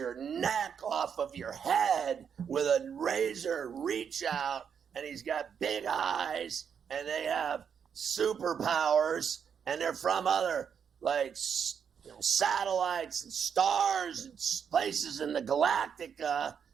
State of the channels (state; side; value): quieter; left; 7.4 dB